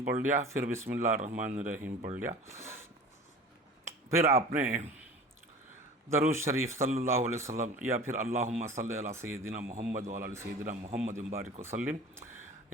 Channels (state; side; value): normal; both; correlation 0.39